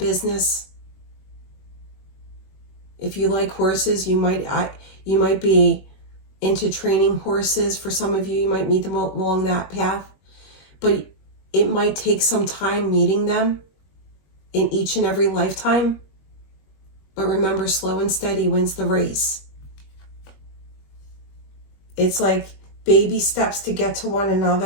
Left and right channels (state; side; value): late; right; 21 ms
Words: If you like horses, you might be into training horses. For some of you, you might meet them along that path. But it might take some time meeting them in each and every lifetime. But remember, slow and steady wins the race. It's like baby steps to get to one